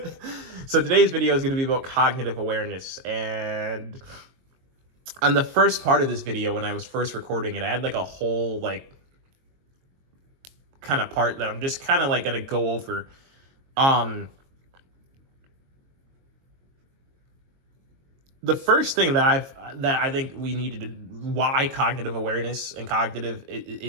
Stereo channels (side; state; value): left; late; 22 ms